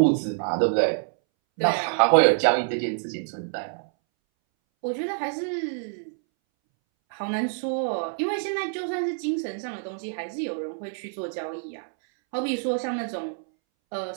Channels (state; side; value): silent; left; 61 dB below the other